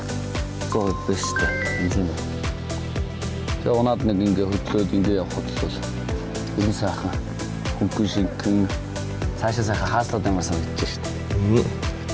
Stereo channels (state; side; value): identical; both; correlation 1.00